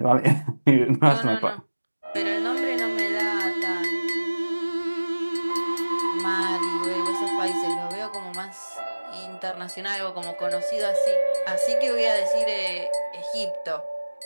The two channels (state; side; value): inverted; both; correlation -1.00